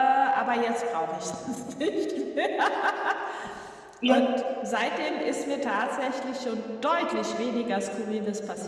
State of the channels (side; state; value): both; identical; correlation 1.00